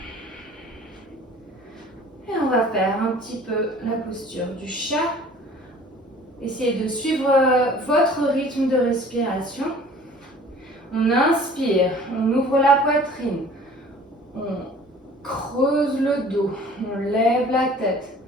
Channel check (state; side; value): normal; both; correlation 0.49